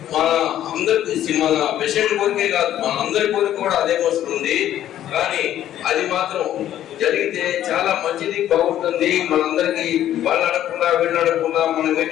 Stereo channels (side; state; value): right; quieter; 11.9 dB